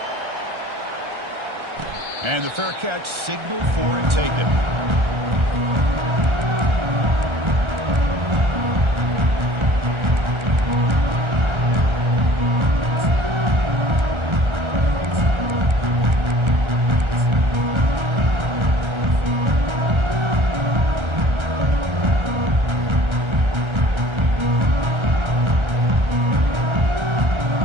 And the fair catch signaled for and taken.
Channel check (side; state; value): left; late; 1.3 ms